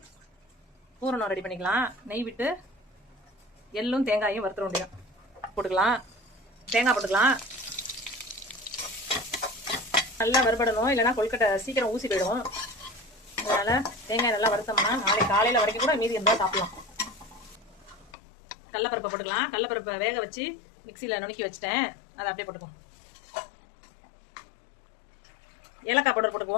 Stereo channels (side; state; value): right; drops out; at 18.1 s